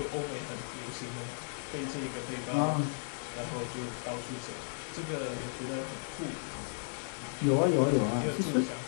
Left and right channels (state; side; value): silent; right; digital silence